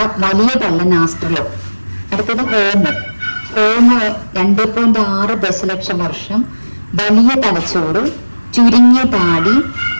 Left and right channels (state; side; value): inverted; both; correlation -1.00